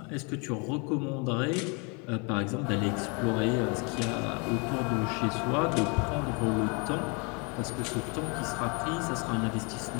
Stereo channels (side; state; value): right; quieter; 32.2 dB